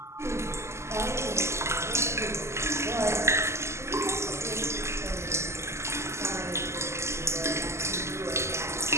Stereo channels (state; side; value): late; left; 0.13 ms